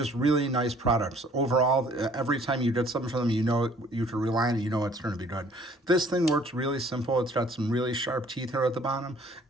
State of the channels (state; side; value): normal; both; correlation 0.57